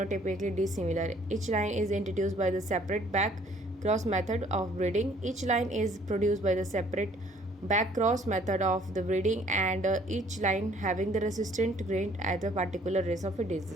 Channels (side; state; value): both; normal; correlation 0.59